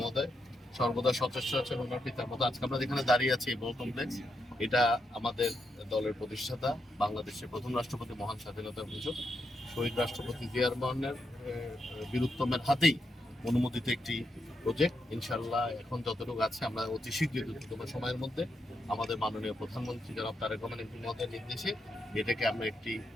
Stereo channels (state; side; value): normal; both; correlation 0.82